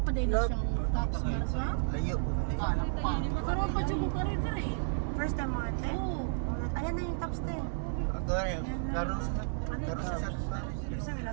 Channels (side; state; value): left; silent; digital silence